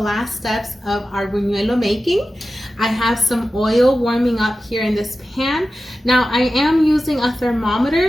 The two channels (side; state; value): both; normal; correlation 0.94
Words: steps of our buñuelo making. I have some oil warming up here in this pan. Now I am using a